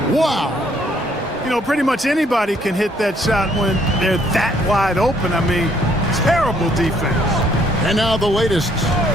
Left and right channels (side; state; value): both; normal; correlation 0.66